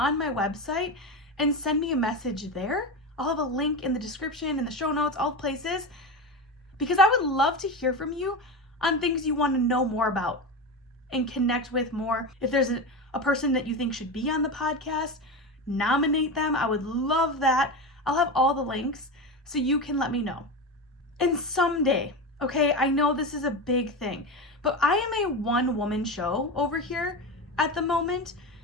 my website and send me a message there. I'll have a link in the description, in the show notes, all places, because I would love to hear from you on things you want to know more about and connect with more. If there's a person that you think should be on the podcast, nominate them. I would love that. I'll have all the links so you can let me know. And someday, okay, I know this is a big thing, but I am a one-woman show over here at the moment.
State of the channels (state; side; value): normal; both; correlation 0.21